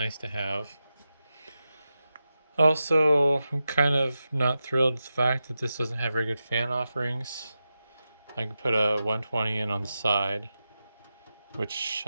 to have. Also, I'm kind of not thrilled with the fact that this doesn't have very good fan offerings. I could put a 120 in on the side, which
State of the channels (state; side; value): inverted; both; correlation -0.91